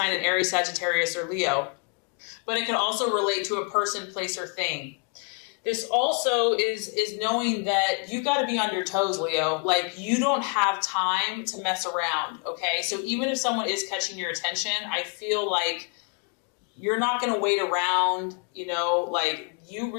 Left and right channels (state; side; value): quieter; right; 36.8 dB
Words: in Aries, Sagittarius, or Leo, but it can also relate to a person, place, or thing. This also is knowing that you've got to be on your toes, Leo. Like, you don't have time to mess around, okay? So even if someone is catching your attention, I feel like you're not going to wait around, like, you